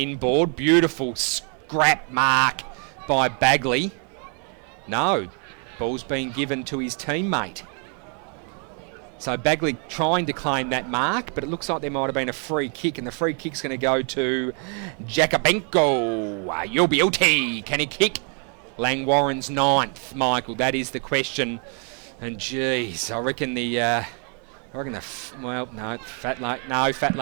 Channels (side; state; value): left; quieter; 39.8 dB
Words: Beautiful scrap mark by Bagley. No, ball's been given to his teammate. So Bagley trying to claim that mark, but it looks like there might have been a free kick, and the free kick's going to go to Jakobenko. You'll be OT. Can he kick? Langwarrin's 9th, Michael. That is the question. And geez, I reckon fat